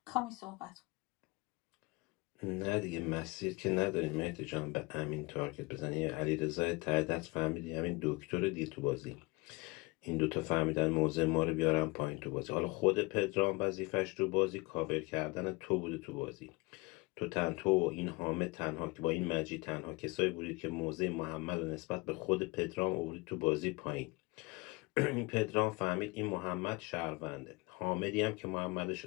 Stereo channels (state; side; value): quieter; right; 25.0 dB